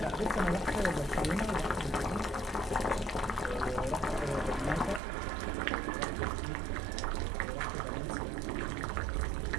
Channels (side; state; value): left; drops out; at 5.0 s